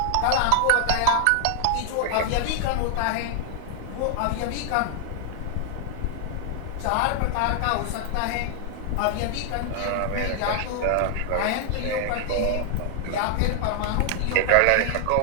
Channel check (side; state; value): both; different; correlation 0.00